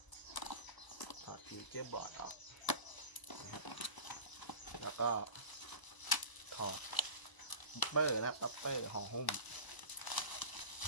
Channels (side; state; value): right; late; 1.0 ms